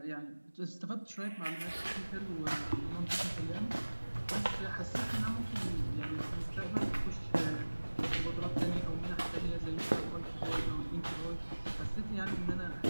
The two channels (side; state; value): both; inverted; correlation -1.00